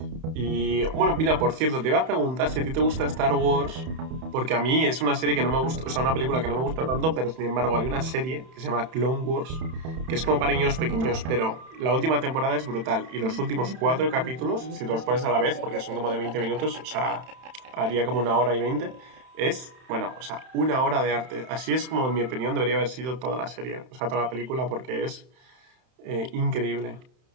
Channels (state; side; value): late; left; 31 ms